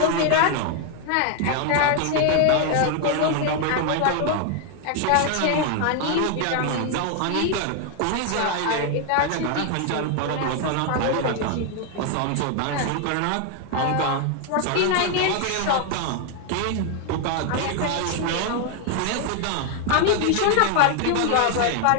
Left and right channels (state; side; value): different; both; correlation 0.00